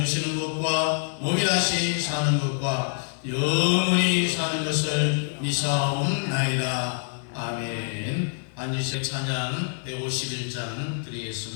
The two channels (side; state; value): right; silent; digital silence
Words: 것과 몸이 다시 사는 것과 영원히 사는 것을 믿사옵나이다. 아멘. 안주신 찬양 151장